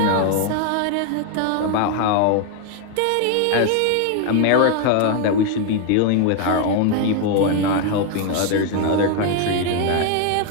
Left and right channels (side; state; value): both; different; correlation 0.01